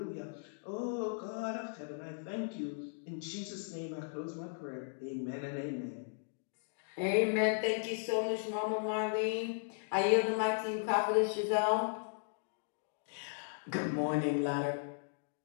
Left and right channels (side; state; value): right; silent; digital silence